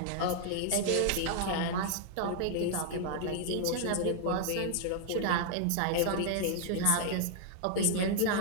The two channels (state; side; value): different; both; correlation -0.01